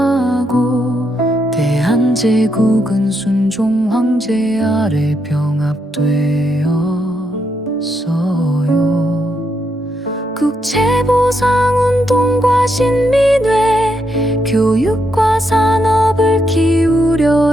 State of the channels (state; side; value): normal; both; correlation 0.79